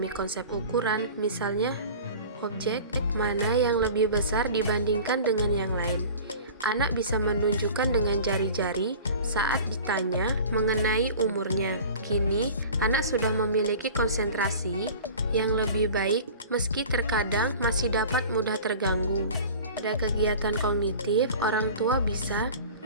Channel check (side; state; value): both; inverted; correlation -0.39